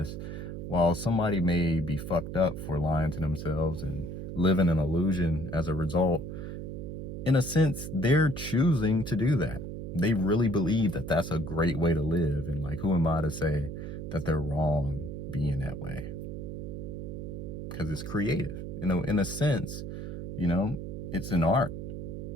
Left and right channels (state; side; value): noise; right; hum, 7 dB below the sound